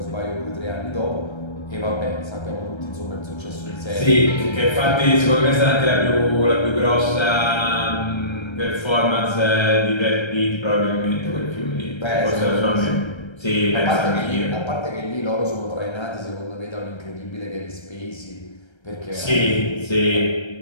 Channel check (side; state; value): right; late; 1.3 ms